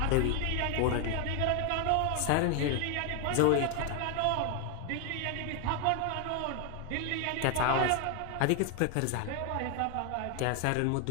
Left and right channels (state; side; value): different; both; correlation 0.00